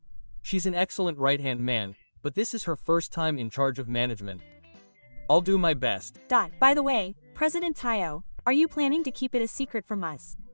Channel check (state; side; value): inverted; both; correlation -1.00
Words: She's an excellent right-hand man, but this is her first time in charge of management. I'll do my best. By the way, President Taiyo, are you planning to keep it a secret from us?